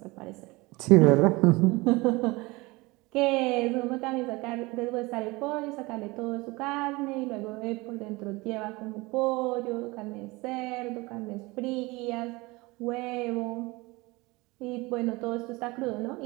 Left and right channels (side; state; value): left; quieter; 23.1 dB